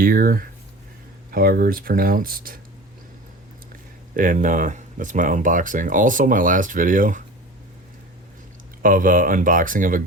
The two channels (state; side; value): normal; both; correlation 0.36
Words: however it's pronounced. And that's my unboxing. Also, my last video of unboxing of a